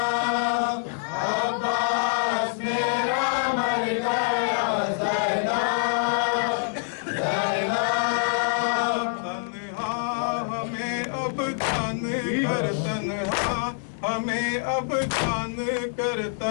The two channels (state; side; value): silent; right; digital silence